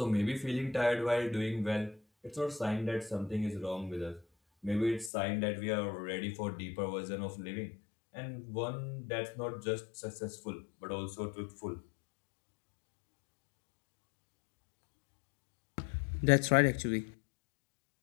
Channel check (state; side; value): drops out; right; at 5.1 s